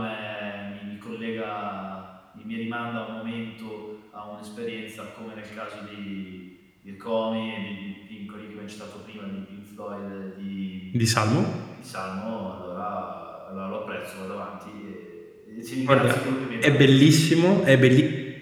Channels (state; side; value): identical; both; correlation 1.00